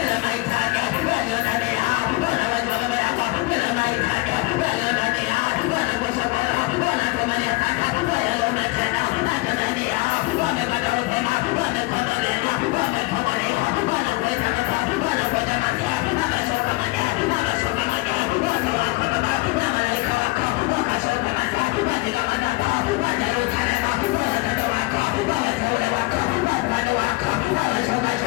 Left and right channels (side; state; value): right; quieter; 23.3 dB